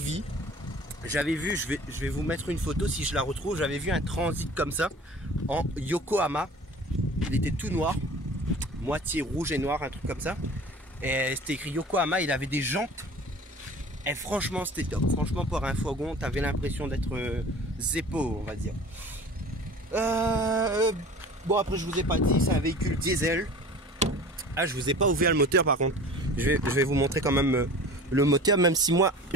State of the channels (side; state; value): both; normal; correlation 0.42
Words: j'avais vu, je vais vous mettre une photo si je la retrouve, j'avais vu un transit comme ça en Yokohama. Il était tout noir, moitié rouge et noir, un truc comme ça, et c'était écrit Yokohama. Il avait des jantes et franchement c'était top. Franchement pour un fourgon t'avais l'impression d'être Zeppo, on va dire. Bon, après je vous ai pas dit, c'est un véhicule diesel. Ah, je vous ai pas ouvert le moteur par contre. Je vais vous montrer quand même le moteur, même si moi